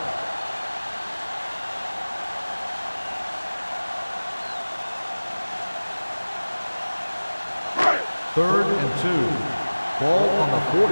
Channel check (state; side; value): inverted; both; correlation -1.00